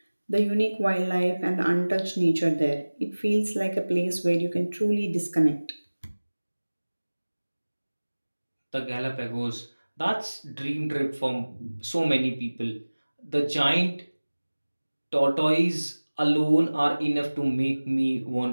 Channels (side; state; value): both; inverted; correlation -1.00